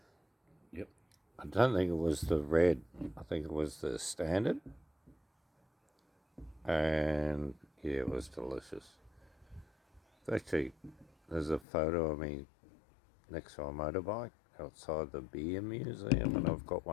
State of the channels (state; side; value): drops out; right; at 11.7 s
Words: Yep. I don't think it was the red. I think it was the standard. And yeah, it was delicious. Actually, there's a photo of me next to a motorbike outside the beer museum, and I've got